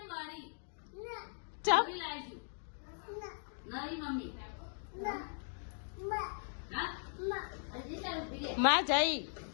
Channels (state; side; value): silent; right; digital silence